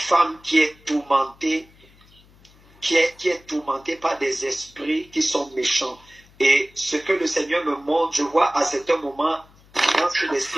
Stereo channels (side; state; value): left; noise; hum, 28 dB below the sound